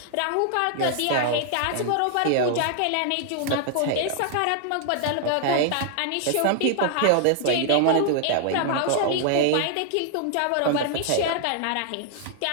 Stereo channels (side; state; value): both; different; correlation 0.00